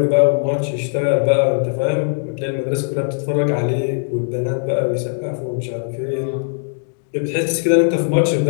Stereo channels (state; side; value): silent; right; digital silence